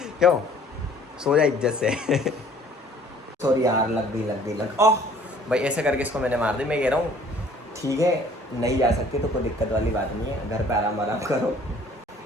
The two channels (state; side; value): normal; both; correlation 0.55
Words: क्यों? सो जा इज्जत से सॉरी यार, लग गई ओह भाई, ऐसे करके इसको मैंने मार दी। मैं कह रहा हूँ ठीक है, नहीं जा सकती तो कोई दिक्कत वाली बात नहीं है, घर पे आराम करो।